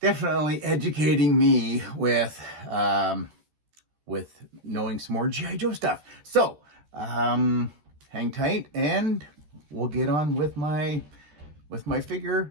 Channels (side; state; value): left; late; 13 ms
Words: Definitely educating me with knowing some more G.I. Joe stuff. So, hang tight and we'll get on with my